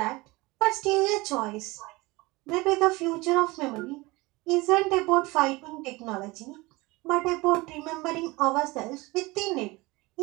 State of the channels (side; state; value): left; quieter; 22.6 dB